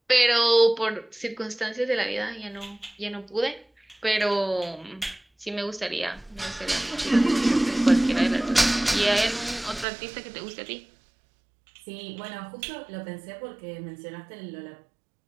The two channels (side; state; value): left; drops out; at 9.9 s